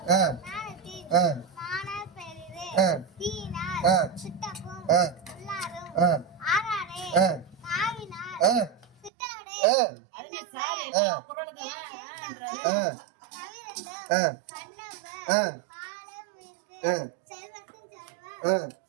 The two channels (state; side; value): drops out; left; at 9.1 s